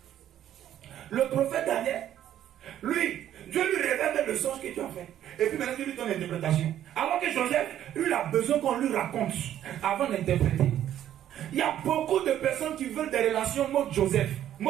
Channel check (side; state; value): left; quieter; 11.3 dB